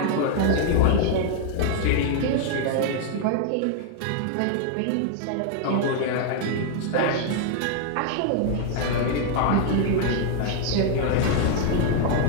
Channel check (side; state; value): both; different; correlation 0.00